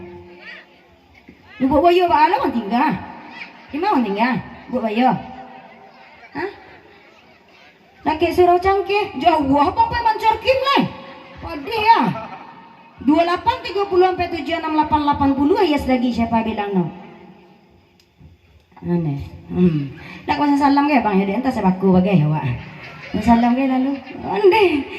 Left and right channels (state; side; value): identical; both; correlation 1.00